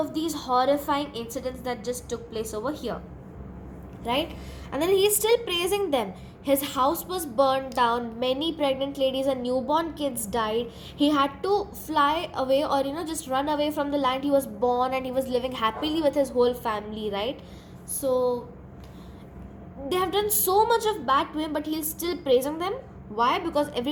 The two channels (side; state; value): both; identical; correlation 1.00